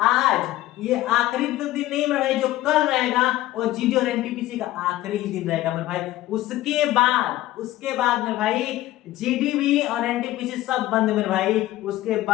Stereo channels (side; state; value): right; quieter; 15.6 dB